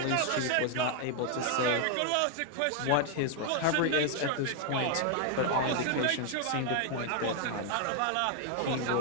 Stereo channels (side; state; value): both; different; correlation 0.00